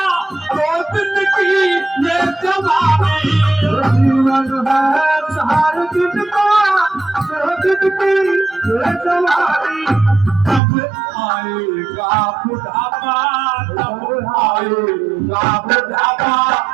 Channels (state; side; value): drops out; left; at 10.6 s